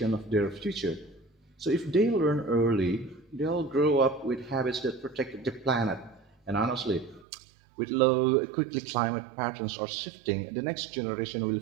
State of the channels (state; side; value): drops out; left; at 7.2 s